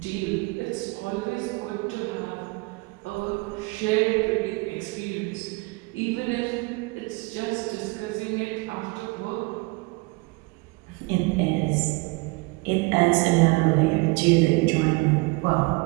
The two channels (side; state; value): left; quieter; 26.4 dB